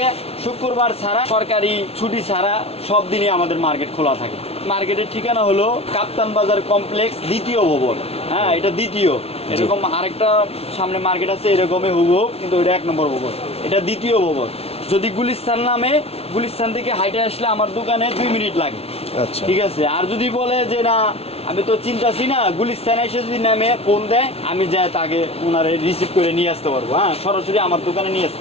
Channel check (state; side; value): late; right; 0.29 ms